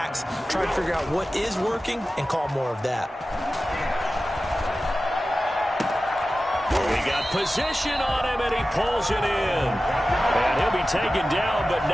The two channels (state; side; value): normal; both; correlation 0.95